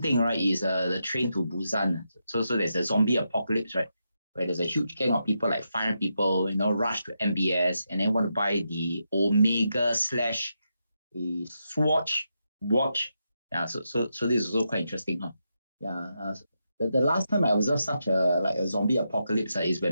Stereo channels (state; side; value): inverted; both; correlation -0.85